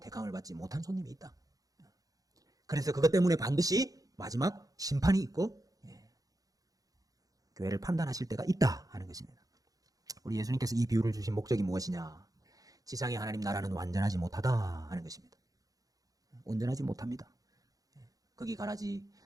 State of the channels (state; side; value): late; left; 0.17 ms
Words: 받지 못한 손님이 있다. 그래서 그것 때문에 반드시 마지막 심판이 있고 교회를 판단하실 때가 있다 하는 것입니다. 우리 예수님께서 이 비유를 주신 목적이 무엇이냐? 지상의 하나님 나라는 완전하지 못하다 하는 것입니다. 온전하지 못합니다. 거기 가라지,